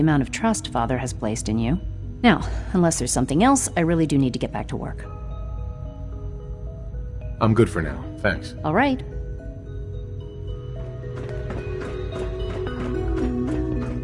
of trust Father has placed in you. Now, unless there's something else, I really do need to get back to work. I'm good for now. Thanks. All right.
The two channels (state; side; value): identical; both; correlation 1.00